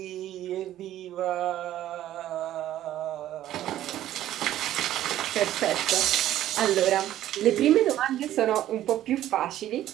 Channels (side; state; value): left; quieter; 12.9 dB